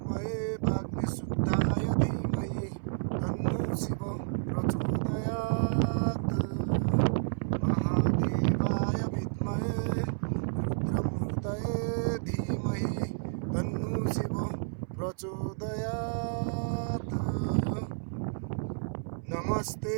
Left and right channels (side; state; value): left; silent; 57 dB below the other